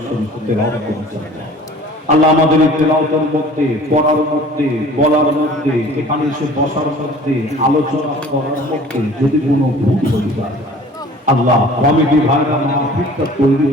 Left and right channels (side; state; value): both; normal; correlation 0.48